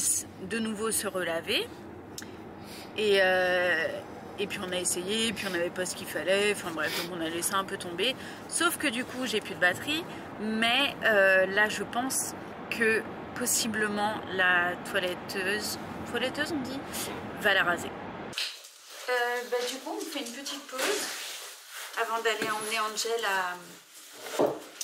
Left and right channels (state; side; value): identical; both; correlation 1.00